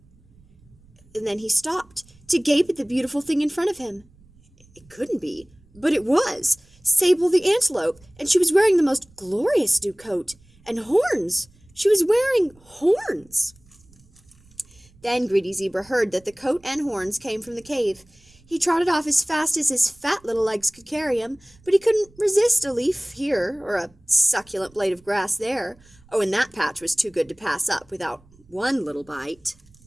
And then he stopped to gape at the beautiful thing in front of him. It couldn't be, but it was. Sable the antelope, and she was wearing the most glorious new coat. And horns! She was wearing horns! Then Greedy Zebra heard that the coat and horns came from the cave. He trotted off as fast as his fat little legs could carry him, but he couldn't resist a leaf here or a succulent blade of grass there. Oh, and that patch was too good to pass up without one little bite.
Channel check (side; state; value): right; noise; rumble, 29 dB below the sound